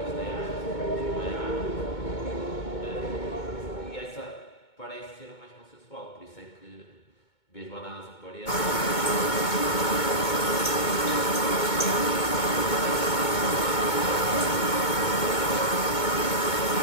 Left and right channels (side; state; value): right; late; 2.2 ms